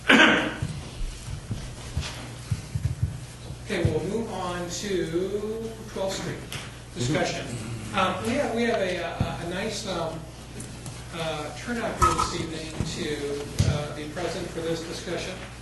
Okay, we'll move on to 12th Street discussion. We have a nice turnout here this evening to be present for this discussion.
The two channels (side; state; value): both; identical; correlation 1.00